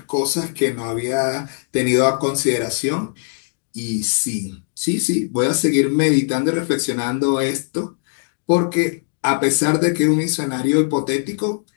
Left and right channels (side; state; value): right; silent; 57 dB below the other